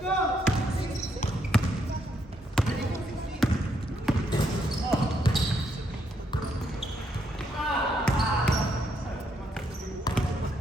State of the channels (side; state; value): both; normal; correlation 0.75